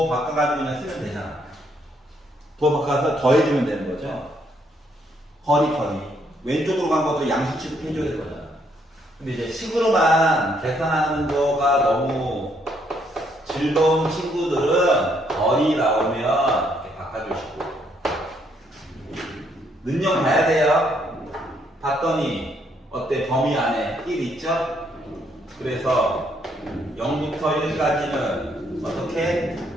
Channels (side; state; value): both; normal; correlation 0.71